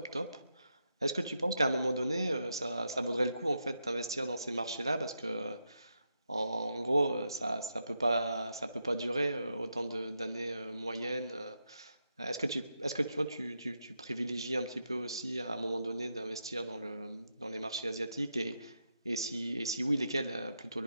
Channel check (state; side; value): inverted; both; correlation -0.84